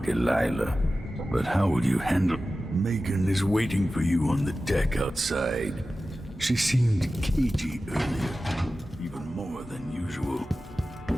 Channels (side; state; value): both; normal; correlation 0.95